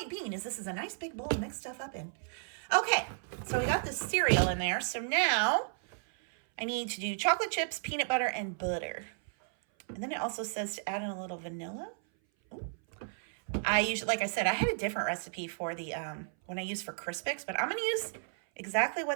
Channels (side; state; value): left; silent; 56 dB below the other